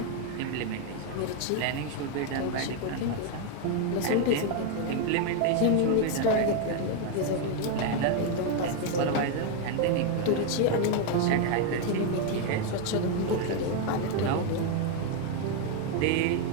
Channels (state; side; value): different; both; correlation 0.01